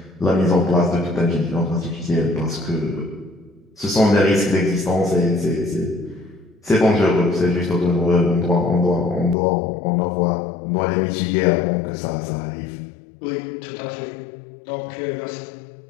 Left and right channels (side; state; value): right; drops out; at 9.3 s